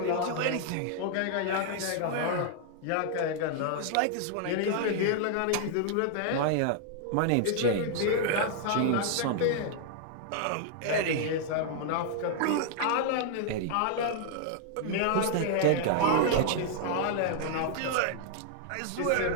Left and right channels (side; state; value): both; different; correlation 0.00